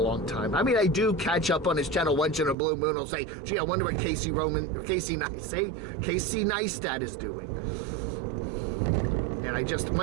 time. I mean, I do catch up on his channel once in a blue moon. I'll say, gee, I wonder what Casey Neistat is doing. And I just,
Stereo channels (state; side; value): drops out; left; at 2.6 s